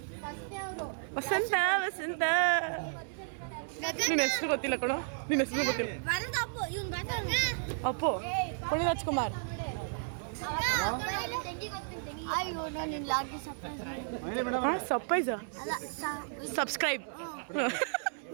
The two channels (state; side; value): silent; left; 56 dB below the other